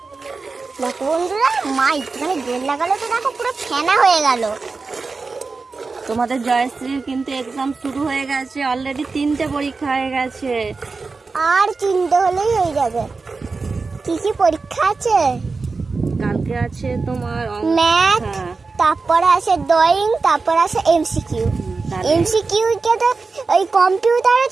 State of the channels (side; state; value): left; quieter; 4.2 dB